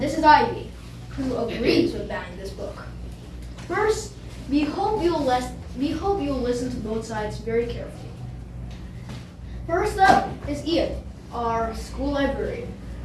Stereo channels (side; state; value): both; identical; correlation 1.00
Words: this is Ivy, who agrees with banning this book. First, we hope you'll listen to both sides very carefully. First up is Ian, our school librarian.